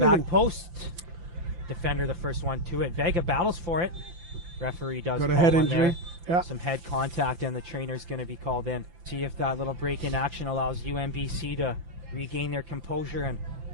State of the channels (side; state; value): left; late; 5.8 ms